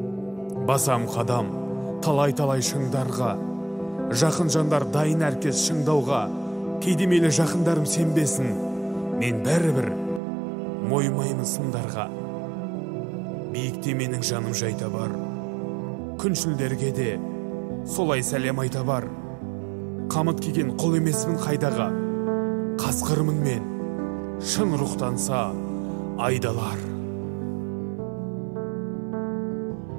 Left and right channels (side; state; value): left; drops out; at 10.2 s